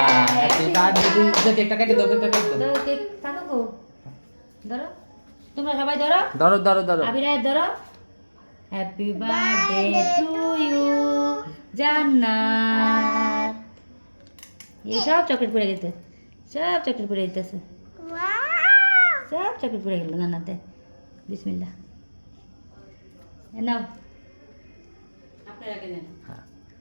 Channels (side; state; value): both; inverted; correlation -1.00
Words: হ্যাপি বার্থডে টু কেকটা কেটে দাও কেকটা কেটে দাও तो केक थाको को धरो তোমরা সবাই ধরো ধরো ধরো ধরো আবিরায় ধরো হ্যাপি বার্থডে টু ইউ জান্নাত এই সব চকলেট পড়ে গেছে সব চকলেট পড়ে যেতেছে সব চকলেট পড়ে গেল জান্নাতে বিসমিল্লাহ এ নাও আপনারা কেনেন হ্যাঁ